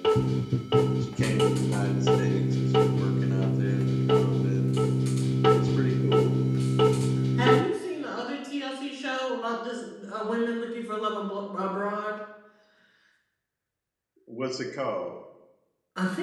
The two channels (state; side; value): identical; both; correlation 1.00